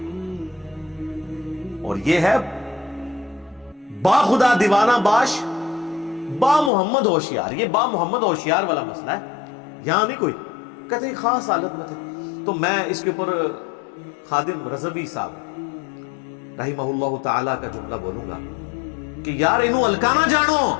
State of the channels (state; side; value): drops out; right; at 6.7 s